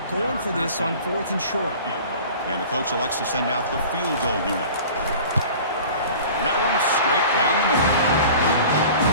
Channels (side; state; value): both; inverted; correlation -0.42